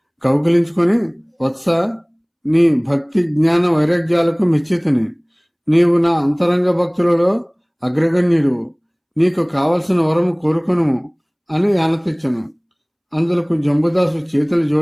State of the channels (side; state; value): both; identical; correlation 1.00